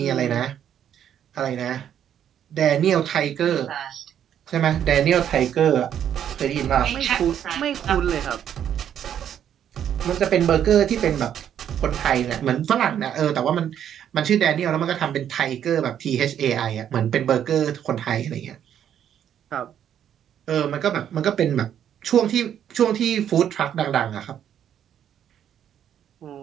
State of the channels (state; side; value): quieter; left; 9.7 dB